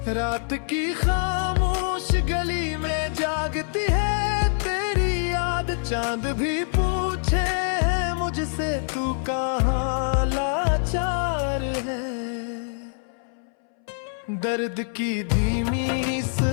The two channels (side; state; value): right; silent; 62 dB below the other